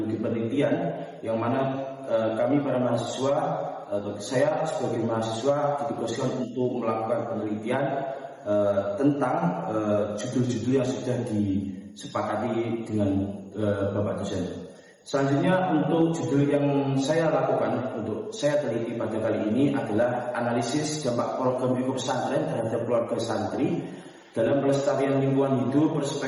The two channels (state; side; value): identical; both; correlation 1.00